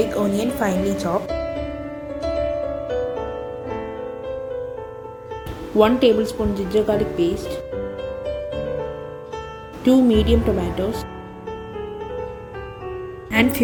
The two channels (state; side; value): identical; both; correlation 1.00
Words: onion finely chopped, 1 tablespoon ginger garlic paste, 2 medium tomatoes, and